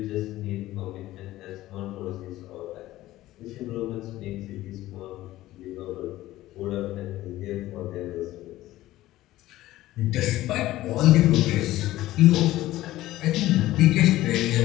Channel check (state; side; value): quieter; right; 15.9 dB